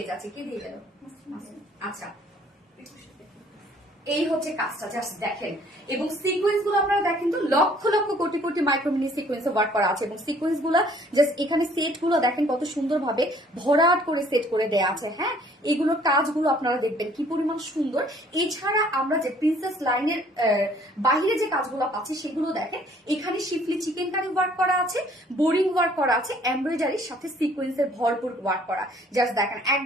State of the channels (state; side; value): normal; both; correlation 0.58